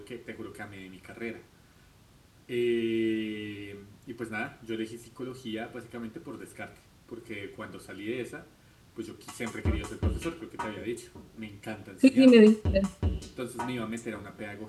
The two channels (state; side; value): identical; both; correlation 1.00